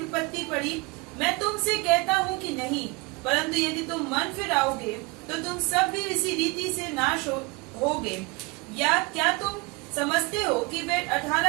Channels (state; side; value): quieter; left; 27.1 dB